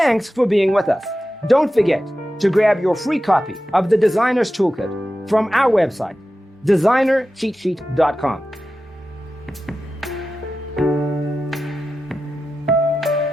for being with us. Don't forget to grab your free copy of the Designer's Toolkit from our website, designercheatsheet.com.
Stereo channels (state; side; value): normal; both; correlation 0.93